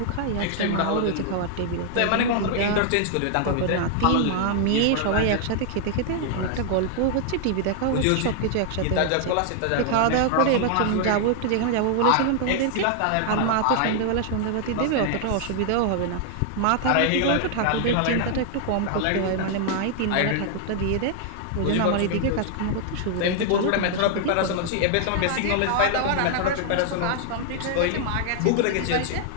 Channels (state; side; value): different; both; correlation 0.00